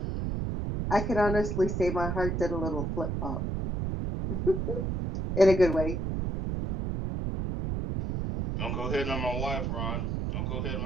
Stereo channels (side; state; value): right; noise; rumble, 1 dB below the sound